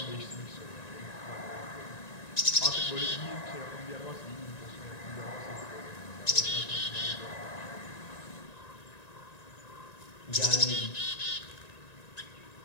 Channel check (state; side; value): late; right; 1.9 ms